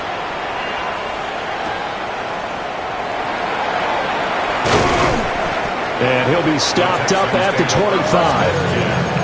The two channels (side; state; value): both; identical; correlation 1.00